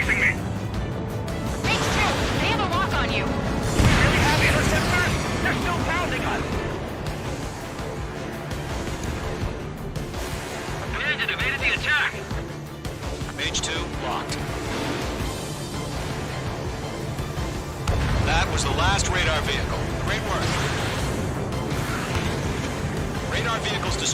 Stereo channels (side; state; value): both; identical; correlation 1.00